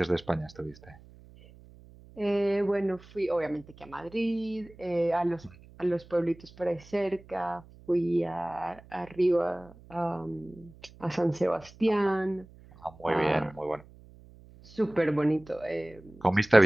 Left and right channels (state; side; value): noise; right; hum, 22 dB below the sound